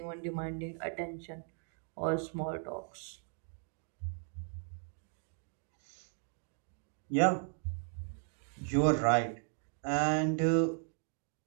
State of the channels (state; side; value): silent; left; 53 dB below the other